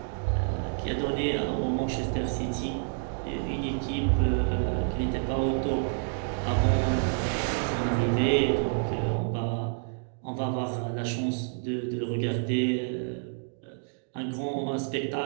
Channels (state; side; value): silent; left; digital silence